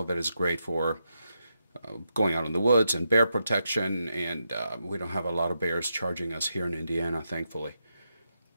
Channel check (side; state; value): both; inverted; correlation -0.84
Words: that it's great for going out in the woods and bear protection, and we don't have a lot of bears charging us here in Indiana, thankfully.